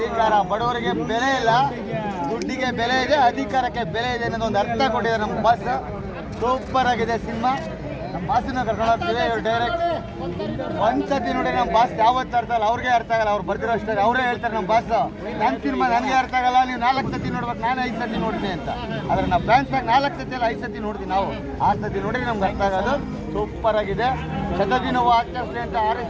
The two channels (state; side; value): identical; both; correlation 1.00